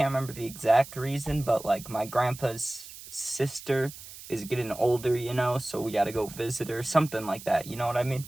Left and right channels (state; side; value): noise; right; hiss, 15 dB below the sound